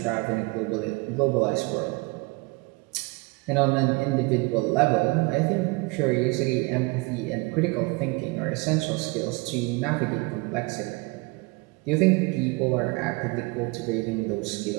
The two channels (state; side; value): quieter; left; 26.4 dB